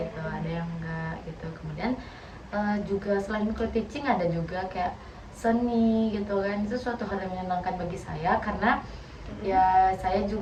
ada yang enggak gitu. Kemudian juga selain micro teaching ada juga kayak seni gitu kan. Itu suatu hal yang menyenangkan bagi saya karena ya saya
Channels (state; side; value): identical; both; correlation 1.00